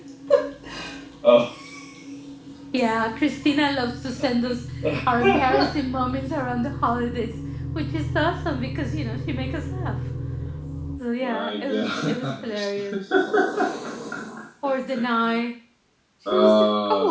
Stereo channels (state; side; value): identical; both; correlation 1.00